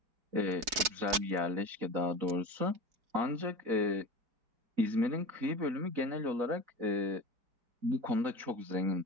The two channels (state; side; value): late; left; 4.7 ms